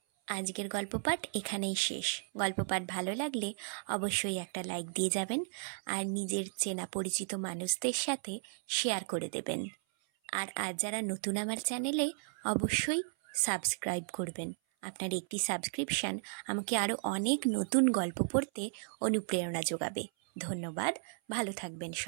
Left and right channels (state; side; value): silent; left; 55 dB below the other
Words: আজকের গল্প পাঠ এখানেই শেষ। গল্প পাঠ ভালো লাগলে অবশ্যই একটা লাইক দিয়ে যাবেন আর নিজের চেনা পরিচিত মানুষদের সাথে শেয়ার করে দেবেন। আর আজ যারা নতুন আমার চ্যানেলে, অবশ্যই সাবস্ক্রাইব করবেন। আপনার একটি সাবস্ক্রিপশান আমাকে আরও অনেক নতুন গল্প পড়তে অনুপ্রেরণা যোগাবে। ধন্যবাদ, ভালো থাকবেন